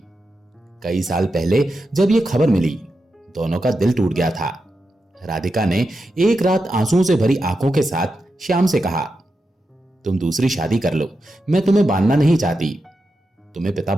कई साल पहले जब ये खबर मिली, दोनों का दिल टूट गया था। राधिका ने एक रात आंसुओं से भरी आंखों के साथ श्याम से कहा, तुम दूसरी शादी कर लो, मैं तुम्हें बांधना नहीं चाहती, तुम्हें पिता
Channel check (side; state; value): both; normal; correlation 0.88